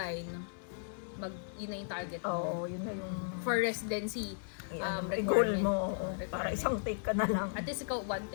yun na yung target mo. Oo, yun na yung For residency, goal requirement. mo. Requirement. Para isang take ka na lang. At least ikaw, one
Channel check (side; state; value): right; silent; digital silence